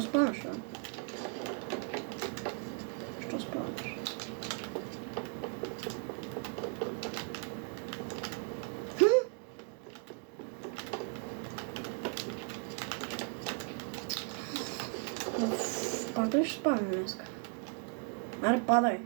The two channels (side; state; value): left; quieter; 37.3 dB